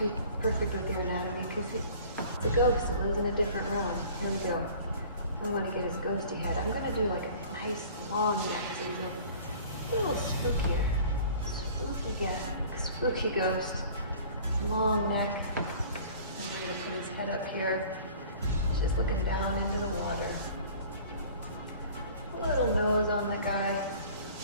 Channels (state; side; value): inverted; both; correlation -0.47